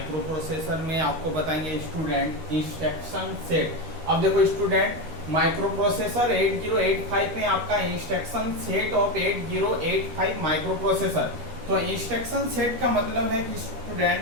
प्रोसेसर में आपको बताएंगे स्टूडेंट इंस्ट्रक्शन सेट। अब देखो स्टूडेंट, माइक्रो प्रोसेसर 8085 में आपका instruction set of 8085 micro processor. तो इंस्ट्रक्शन सेट का मतलब है कि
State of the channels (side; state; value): left; late; 13 ms